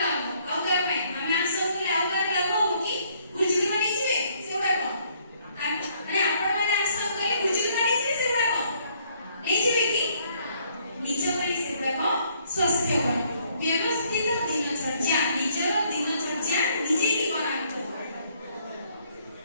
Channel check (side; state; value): both; inverted; correlation -0.66